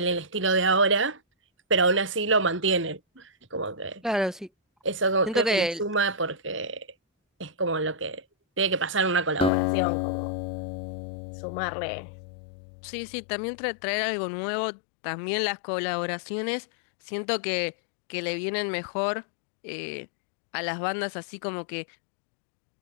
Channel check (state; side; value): drops out; right; at 9.5 s